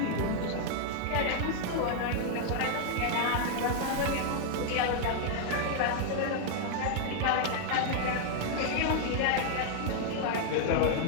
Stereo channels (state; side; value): different; both; correlation 0.00